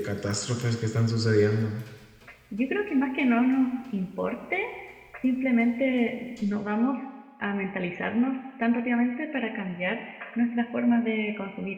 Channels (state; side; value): identical; both; correlation 1.00